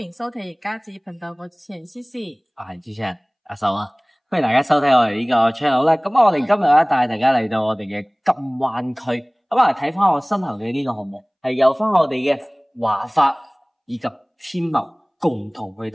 收睇而家子頻道，我主持人思思，我係主持人阿秀啊，歡迎大家收睇我哋呢個 channel 啦。咁我哋今日咧帶大家嚟到我哋嘅金灣區，咁啊睇翻我身後嘅呢個項目，係由翻我哋嘅華發以及天茂共同去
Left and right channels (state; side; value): identical; both; correlation 1.00